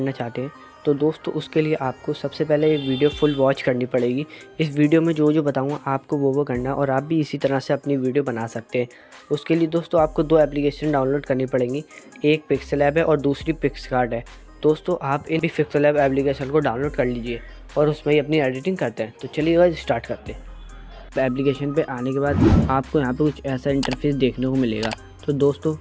चाहते हैं तो दोस्तों उसके लिए आपको सबसे पहले ये वीडियो फुल वॉच करनी पड़ेगी। इस वीडियो में जो जो बताऊंगा आपको वो करना है और आप भी इसी तरह से अपनी वीडियो बना सकते हैं। उसके लिए दोस्तों आपको दो एप्लीकेशन डाउनलोड करनी पड़ेंगी, एक पिक्सेल ऐप है और दूसरी पिक्सआर्ट है। दोस्तों आप इन पिक्सेल ऐप एप्लीकेशन को डाउनलोड कर लीजिए और उसमें ही अपनी एडिटिंग करते हैं। तो चलिए गाइस स्टार्ट करते हैं। एप्लीकेशन पे आने के बाद आपको यहाँ पे कुछ ऐसा इंटरफेस देखने को मिलेगा। तो दोस्तों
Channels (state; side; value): identical; both; correlation 1.00